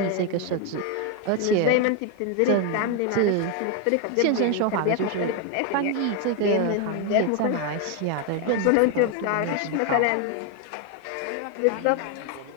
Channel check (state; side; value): different; both; correlation 0.01